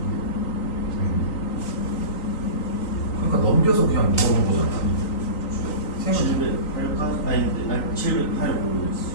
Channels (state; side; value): late; right; 3.9 ms